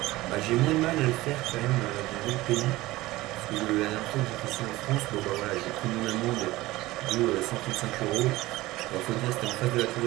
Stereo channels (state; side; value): quieter; left; 18.4 dB